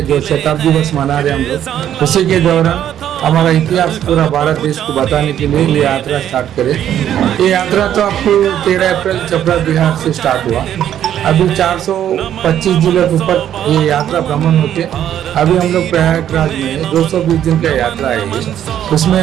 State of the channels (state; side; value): quieter; left; 10.6 dB